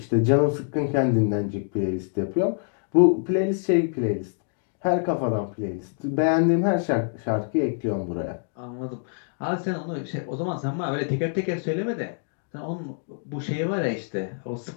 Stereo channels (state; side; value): silent; right; digital silence